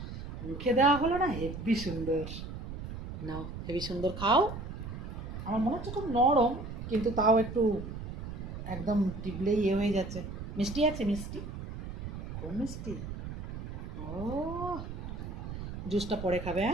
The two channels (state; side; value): noise; right; rumble, 8 dB below the sound